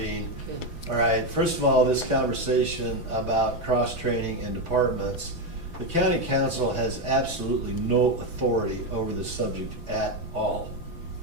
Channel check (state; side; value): late; left; 6.0 ms